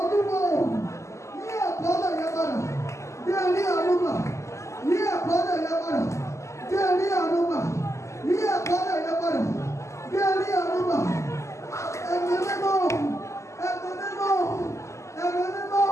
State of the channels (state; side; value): late; right; 0.14 ms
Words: yí àkọọ́lẹ̀ yẹn padà kí ẹ rí àánú gbà yí àkọọ́lẹ̀ yẹn padà kí ẹ rí àánú gbà yí àkọọ́lẹ̀ yẹn padà kí ẹ rí àánú gbà. Ẹ̀mí mímọ́ ẹ̀mí mímọ́ ẹ̀mí mímọ́